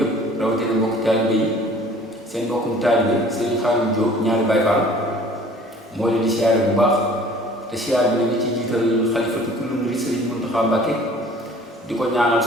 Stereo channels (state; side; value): normal; both; correlation 0.50